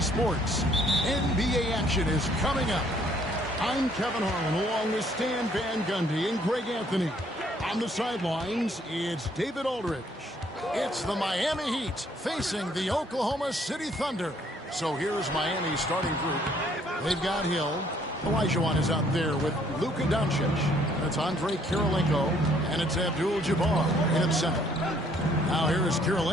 Sports. NBA action is coming up. I'm Kevin Harlan along with Stan Van Gundy and Greg Anthony. On the sidelines, it's David Aldridge. It's the Miami Heat facing the Oklahoma City Thunder. So here's Miami's starting group. They've got Hill. Olajuwon is out there with Luka Doncic. That's Andre Kirilenko, and it's Abdul-Jabbar in center. Now here is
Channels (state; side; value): normal; both; correlation 0.64